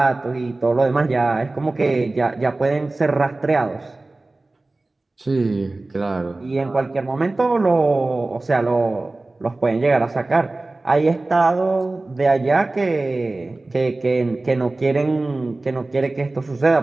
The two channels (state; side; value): quieter; left; 3.1 dB